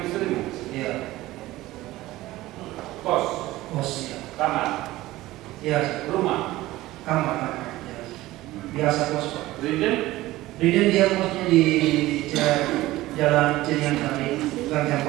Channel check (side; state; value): left; quieter; 17.3 dB